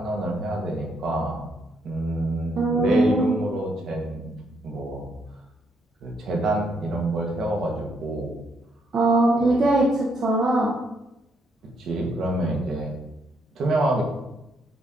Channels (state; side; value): normal; both; correlation 0.74